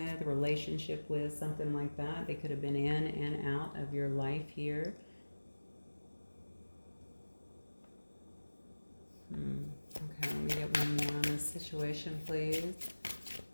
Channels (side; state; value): both; inverted; correlation -1.00